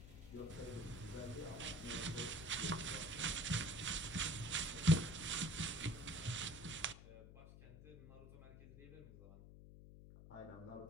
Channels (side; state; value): left; noise; hum, 15 dB below the sound